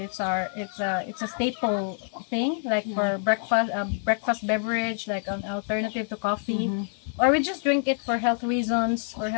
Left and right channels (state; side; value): silent; right; digital silence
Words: a staple thing, like for breakfast beverage, like an alternative to coffee, or we just drink it for healthy reasons.